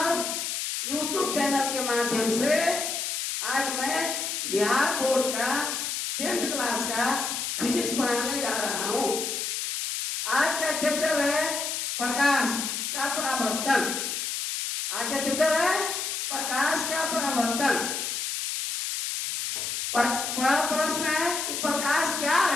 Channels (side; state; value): left; noise; hiss, 2 dB below the sound